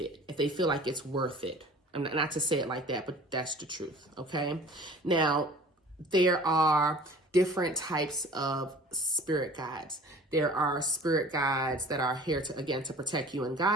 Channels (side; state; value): both; normal; correlation 0.45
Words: if they feel like it's worth it. Not to say it like that, but that's the truth, okay? Now, there are different types of spirit guides. There are spirit guides that are here to, again, to protect you and